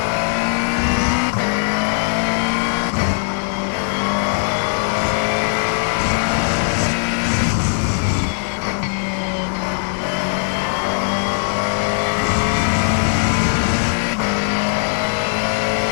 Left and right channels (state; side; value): silent; right; digital silence